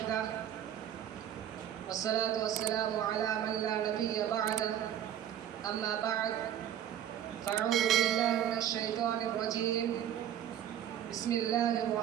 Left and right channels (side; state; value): left; quieter; 10.5 dB